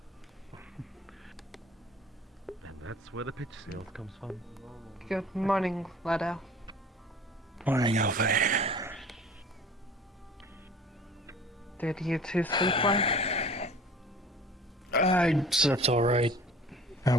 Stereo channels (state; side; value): normal; both; correlation 0.44